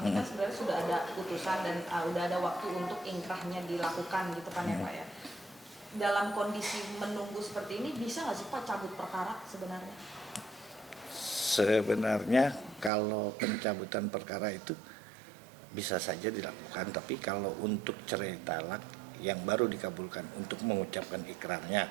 ini kan sebenarnya sudah ada putusan dan udah ada waktu untuk inkrahnya dilakukan gitu kan ya Pak ya. Dalam kondisi menunggu seperti ini bisa nggak sih Pak cabut perkara sebenarnya? Sebenarnya kalau pencabutan perkara itu bisa saja dilakukan, tapi kalau untuk cerai talak yang baru dikabulkan untuk mengucapkan ikrarnya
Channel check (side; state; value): left; drops out; at 12.9 s